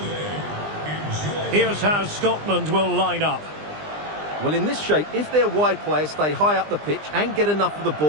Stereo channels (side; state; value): left; late; 20 ms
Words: Enjoy. Here's how Scotland will line up. Well, in this shape, if their wide players stay high up the pitch and get enough of the